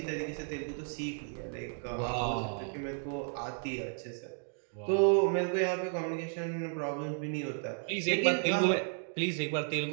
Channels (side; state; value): left; silent; 55 dB below the other